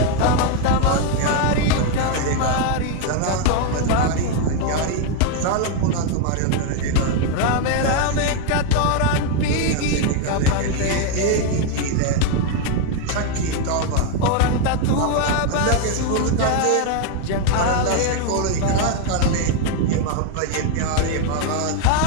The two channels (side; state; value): both; different; correlation 0.01